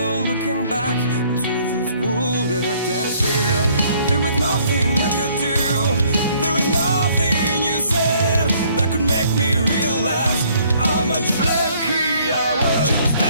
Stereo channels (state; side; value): inverted; both; correlation -0.62